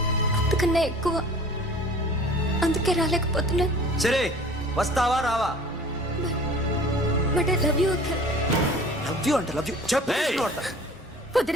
అంతకన్నా ఎక్కువ. అందుకే రాలేకపోతున్నాను. సరే వస్తావా రావా? But I love you Akhil. Love you అంటే లవ్ యూ చెప్పు.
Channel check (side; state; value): both; normal; correlation 0.46